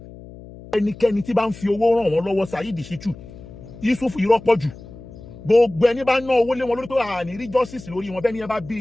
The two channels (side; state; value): left; noise; hum, 17 dB below the sound